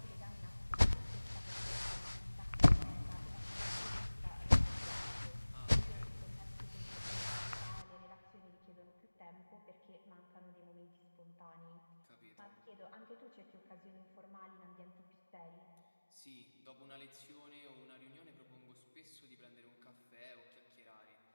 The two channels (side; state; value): both; inverted; correlation -1.00